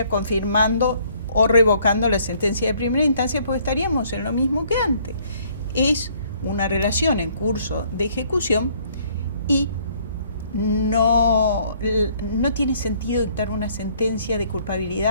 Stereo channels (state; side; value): inverted; both; correlation -0.63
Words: confirmando o revocando la sentencia de primera instancia, porque estaríamos en lo mismo que antes. Es una relación en curso de ejecución y no tiene sentido dictar una sentencia de